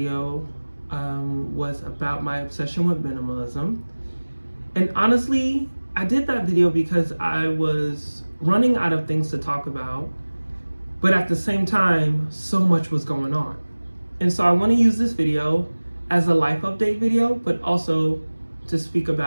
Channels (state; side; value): inverted; both; correlation -1.00